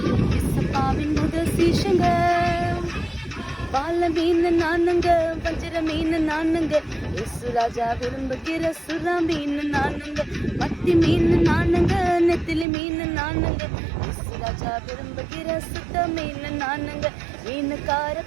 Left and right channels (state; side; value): drops out; left; at 12.7 s